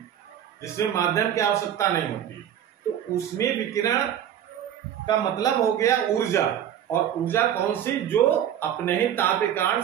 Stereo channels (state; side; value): quieter; left; 10.1 dB